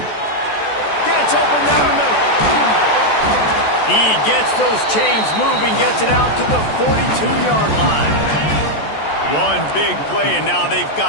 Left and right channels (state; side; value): late; right; 14 ms